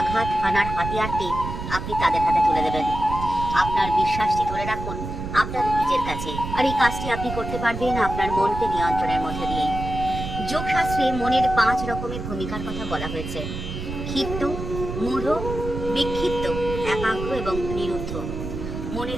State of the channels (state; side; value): noise; right; rumble, 6 dB below the sound